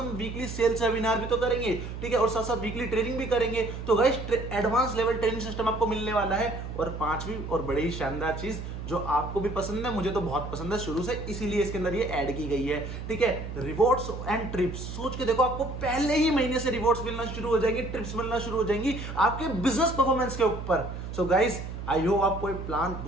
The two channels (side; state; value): right; noise; hum, 8 dB below the sound